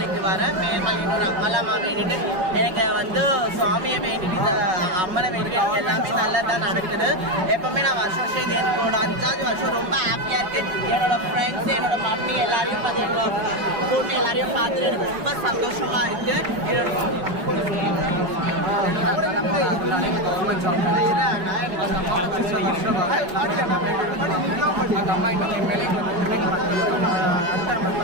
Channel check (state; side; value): late; left; 5.4 ms